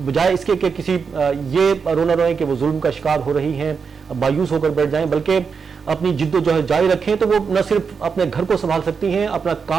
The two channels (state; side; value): quieter; left; 5.7 dB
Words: بجائے اس کے کہ کسی یہ رونا روئیں کہ وہ ظلم کا شکار ہو رہی ہیں مایوس ہو کر بیٹھ جائیں بلکہ اپنی جد و جہد جاری رکھیں تو وہ نہ صرف اپنے گھر کو سنبھال سکتی ہیں اپنا